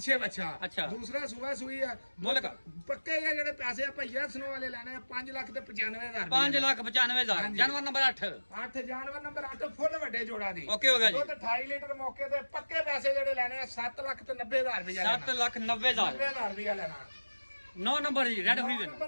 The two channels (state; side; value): inverted; both; correlation -1.00